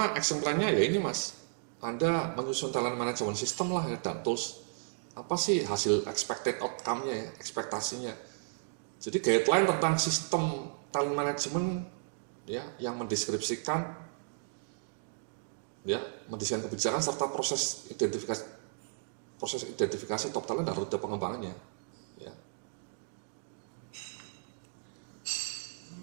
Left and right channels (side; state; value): left; silent; digital silence